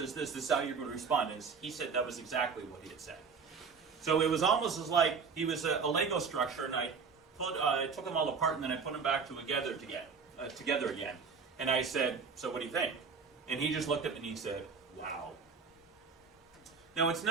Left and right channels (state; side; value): quieter; left; 5.4 dB